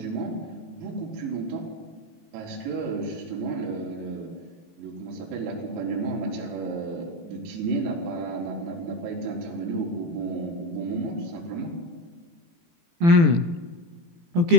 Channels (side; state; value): left; late; 18 ms